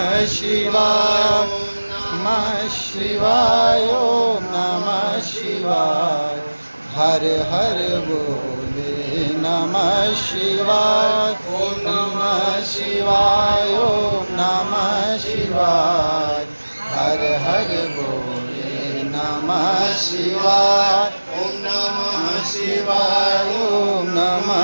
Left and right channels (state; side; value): inverted; both; correlation -1.00